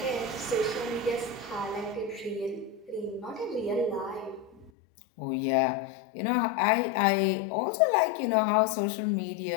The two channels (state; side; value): drops out; right; at 4.7 s